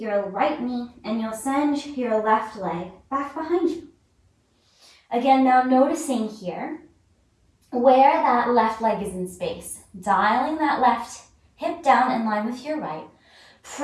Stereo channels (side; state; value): both; identical; correlation 1.00